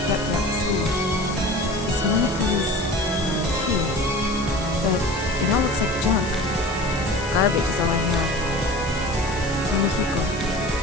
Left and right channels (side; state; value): left; noise; hiss, 14 dB below the sound